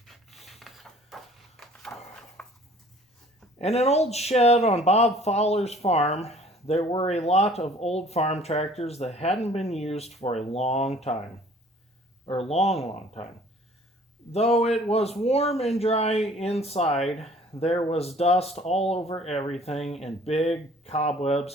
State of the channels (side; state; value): both; normal; correlation 0.53